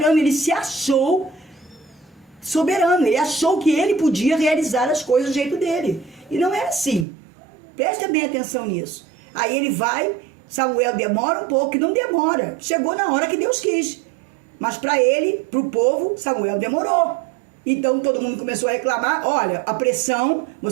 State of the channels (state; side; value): drops out; left; at 7.1 s